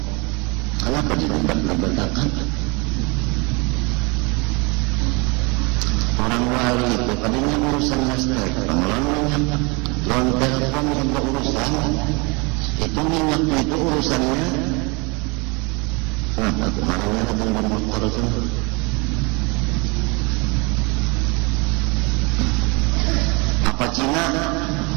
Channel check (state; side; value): quieter; left; 29.1 dB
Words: Kenapa dilebat-lebatkan? Orang wali itu tadinya urusan listrik, pengelolanya, loan telepon juga urusan. Itu minyak itu urusannya. Kenapa kemarinnya ada dengan motor itu? Apa Cina?